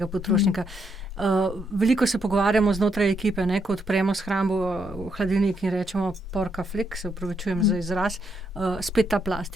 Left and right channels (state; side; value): normal; both; correlation 0.77